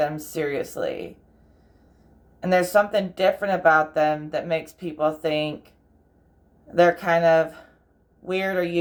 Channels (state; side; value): identical; both; correlation 1.00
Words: seriously. And there's something different about them that makes people think they're kind of weird or